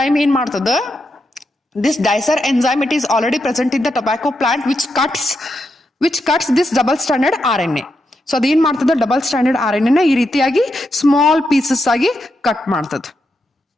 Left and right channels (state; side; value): normal; both; correlation 0.84